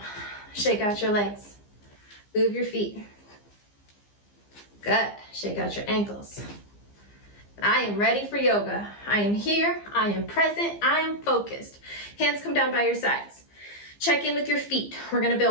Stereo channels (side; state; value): right; late; 15 ms